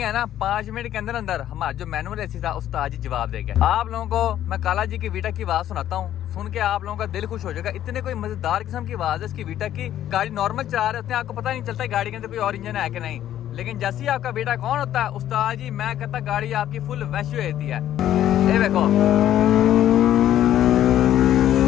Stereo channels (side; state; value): right; quieter; 11.7 dB